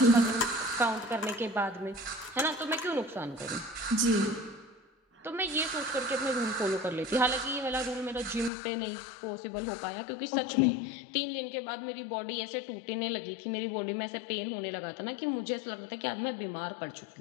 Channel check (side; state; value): right; drops out; at 8.5 s